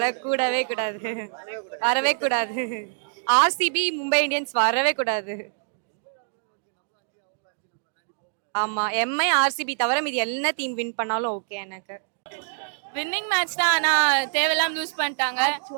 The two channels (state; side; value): silent; left; digital silence